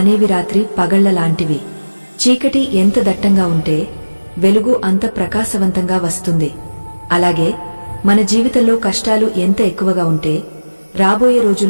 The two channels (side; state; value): both; inverted; correlation -1.00